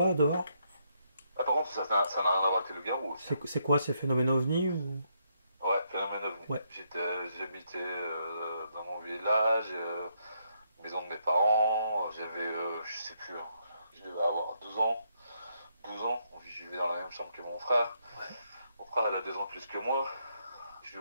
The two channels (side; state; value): both; inverted; correlation -0.76